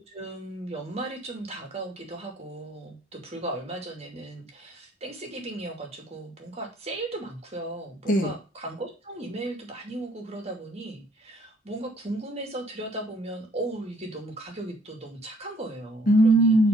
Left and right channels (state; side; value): normal; both; correlation 0.61